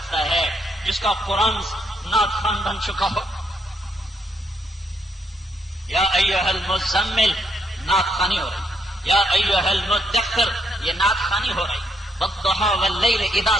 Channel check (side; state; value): both; normal; correlation 0.75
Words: ہے جس کا قرآن نعت خوان بن چکا ہو؟ یا ایھا المزمل نعت خوانی ہو رہی، یا ایھا المدثر یہ نعت خوانی ہو رہی، والضحى واللیل اذا